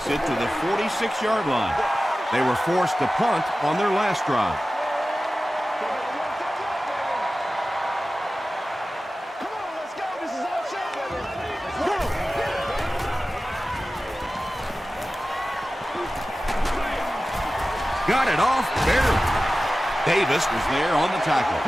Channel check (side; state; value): both; normal; correlation 0.95